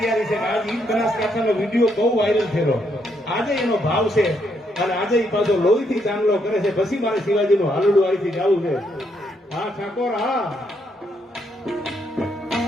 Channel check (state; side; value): normal; both; correlation 0.75